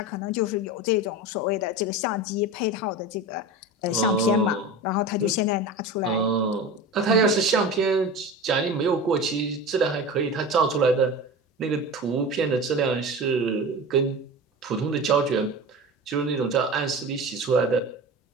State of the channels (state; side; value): normal; both; correlation 0.30